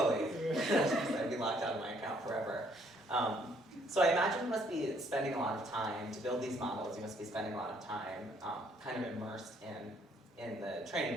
I'd be locked out of my account forever. So I imagine you must be spending a lot of time to build these models. You must be spending a lot of time kind of immersed in the training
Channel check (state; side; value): normal; both; correlation 0.66